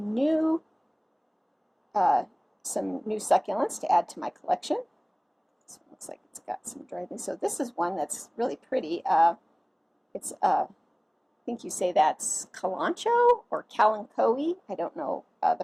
new succulents to add to my collection. This one looks like it's got some dry leaves. So this is one that's really pretty. It's I think you say that's Kalanchoe or Kalanchoe. I don't know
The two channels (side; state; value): both; identical; correlation 1.00